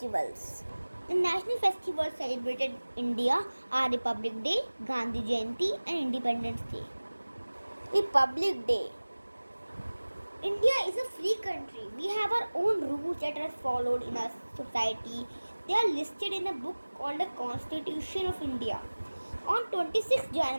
The national festivals celebrated in India are Republic Day, Gandhi Jayanti and Independence Day. Republic Day. India is a free country. We have our own rules that are followed in our society. They are listed in a book called the Constitution of India. On 26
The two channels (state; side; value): inverted; both; correlation -1.00